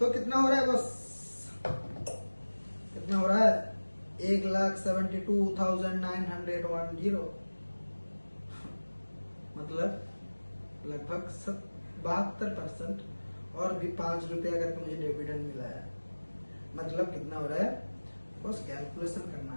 कितना हो रहा है बस, कितना हो रहा है, 1,72,910, मतलब लगभग 72%, और भी 5 रुपया करके मुझे डिविडेंड मिला है। मतलब कितना हो रहा है, बस कैलकुलेशन करना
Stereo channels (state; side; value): inverted; both; correlation -1.00